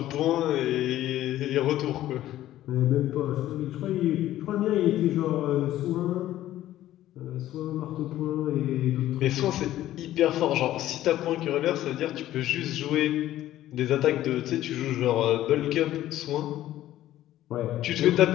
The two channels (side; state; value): right; quieter; 13.8 dB